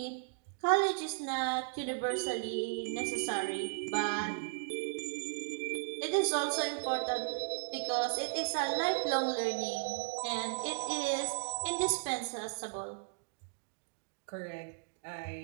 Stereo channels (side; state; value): left; silent; digital silence